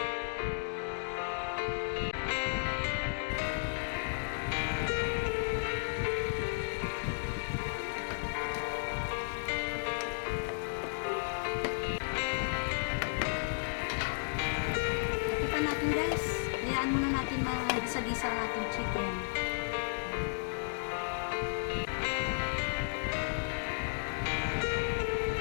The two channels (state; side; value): silent; right; digital silence